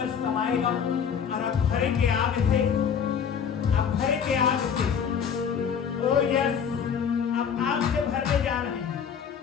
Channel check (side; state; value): right; quieter; 7.3 dB